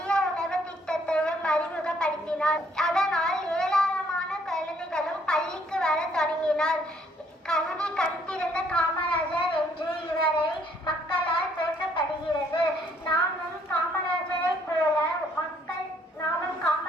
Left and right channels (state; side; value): normal; both; correlation 0.65